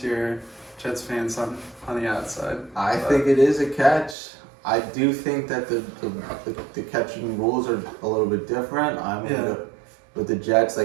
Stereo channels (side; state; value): left; drops out; at 4.2 s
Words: Jets fans on the outside. I think it is a catch. I do think that the catching rules are a little bit different. With the Jets,